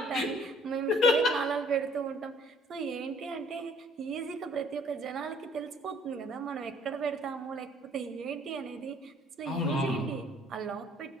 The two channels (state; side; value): normal; both; correlation 0.59